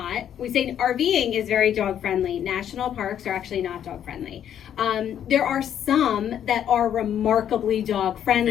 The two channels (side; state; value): right; quieter; 9.8 dB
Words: we say RVing is very dog friendly. National parks are actually not dog friendly. There are some that are remarkably dog